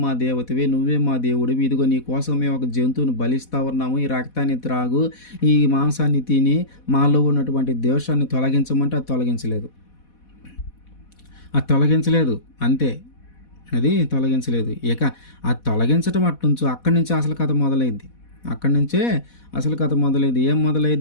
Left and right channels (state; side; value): late; right; 4.1 ms